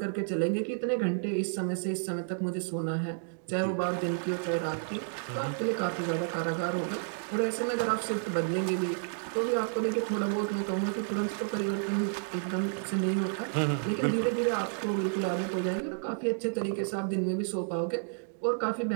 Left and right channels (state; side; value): silent; left; digital silence